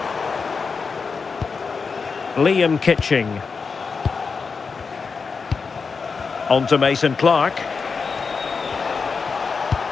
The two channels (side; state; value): right; quieter; 5.1 dB